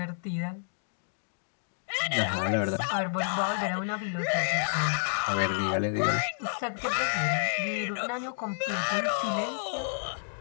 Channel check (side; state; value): right; silent; digital silence